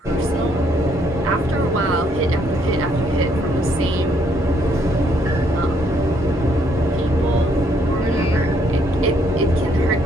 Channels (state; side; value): normal; both; correlation 0.70